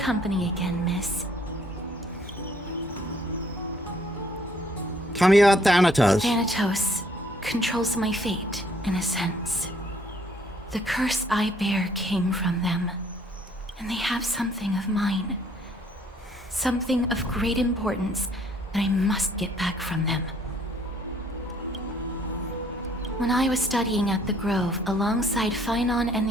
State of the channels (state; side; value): normal; both; correlation 0.63